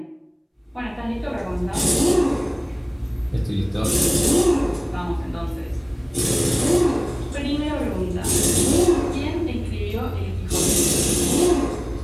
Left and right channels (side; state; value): both; identical; correlation 1.00